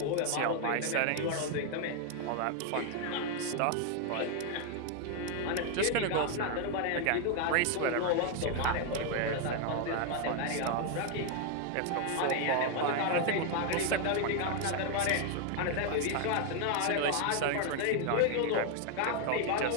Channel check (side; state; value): both; different; correlation 0.01